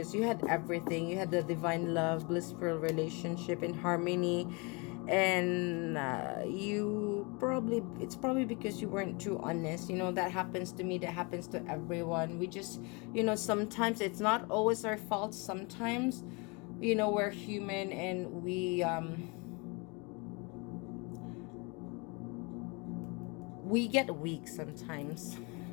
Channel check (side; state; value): right; quieter; 29.9 dB